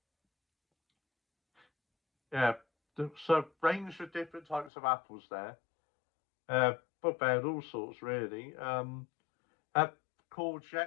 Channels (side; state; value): right; drops out; at 4.7 s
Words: Yeah. So range of different types of apples there. But they had all sorts really.